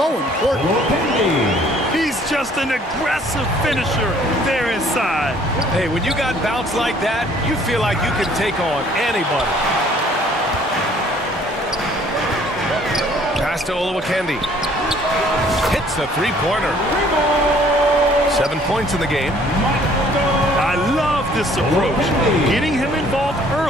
important. He's just an aggressive finisher there inside. Hey, when you got bounce like that, you feel like you can take on anybody. Pass to Olowokandi. Hits the three-pointer. 7 points in the game. I love this approach. Getting him involved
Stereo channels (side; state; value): both; normal; correlation 0.58